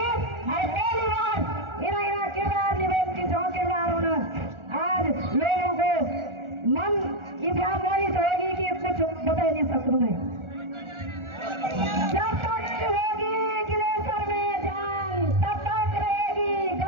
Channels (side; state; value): left; late; 1.4 ms